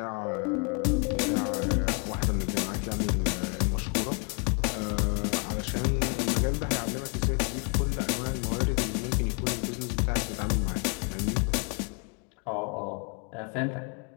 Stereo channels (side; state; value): right; quieter; 36.2 dB